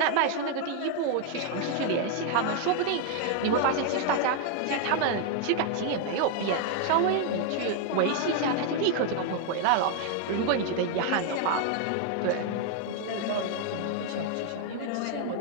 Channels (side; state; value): both; different; correlation 0.00